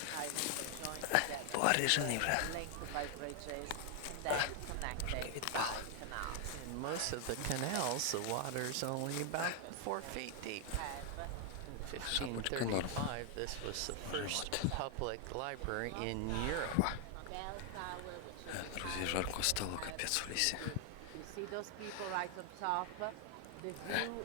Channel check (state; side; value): different; both; correlation 0.00